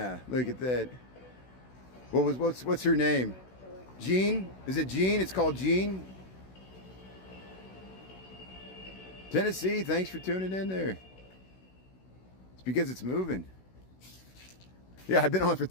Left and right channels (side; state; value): right; late; 16 ms